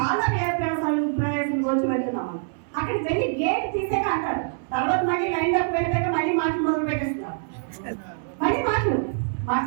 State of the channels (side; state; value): left; silent; digital silence